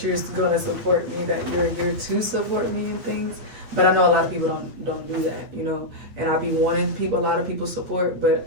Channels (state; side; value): late; left; 8.7 ms